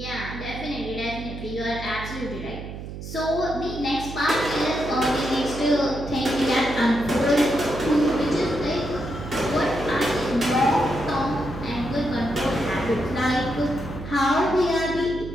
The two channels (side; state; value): right; noise; hum, 9 dB below the sound